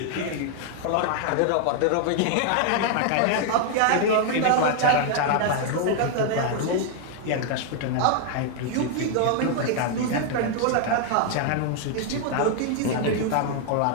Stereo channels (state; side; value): different; both; correlation 0.00